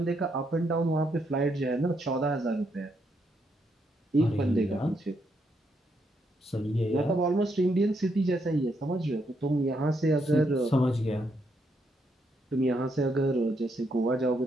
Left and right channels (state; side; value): normal; both; correlation 0.77